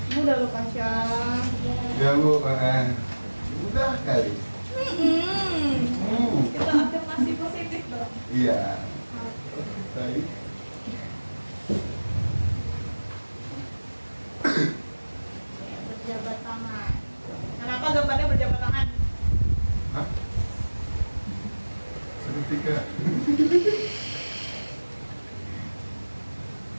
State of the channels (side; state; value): both; inverted; correlation -1.00